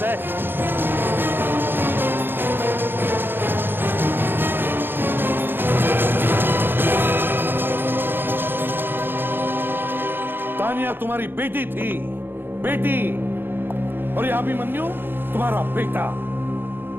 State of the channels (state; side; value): late; left; 0.10 ms